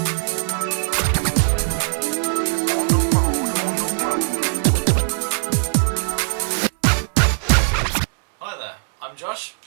there, I'm Josh.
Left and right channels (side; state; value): left; silent; digital silence